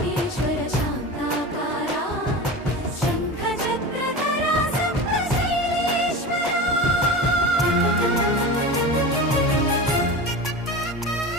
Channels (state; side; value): normal; both; correlation 0.29